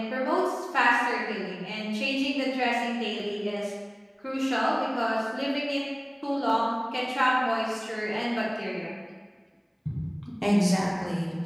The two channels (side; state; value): both; identical; correlation 1.00